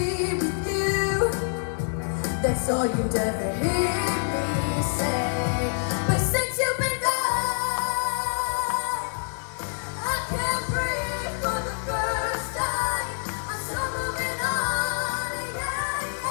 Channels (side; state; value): right; silent; digital silence